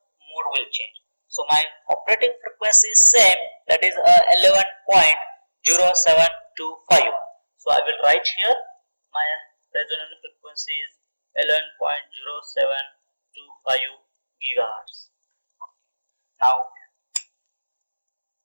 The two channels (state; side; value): inverted; both; correlation -1.00